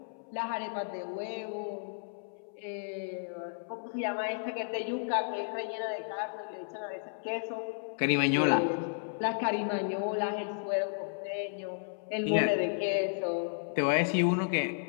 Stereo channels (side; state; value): right; silent; 56 dB below the other